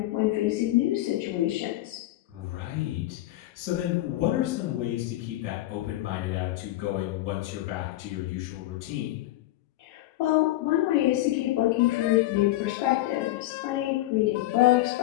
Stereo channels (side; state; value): right; quieter; 16.1 dB